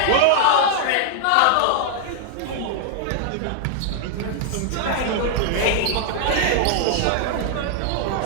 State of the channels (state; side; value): different; both; correlation 0.00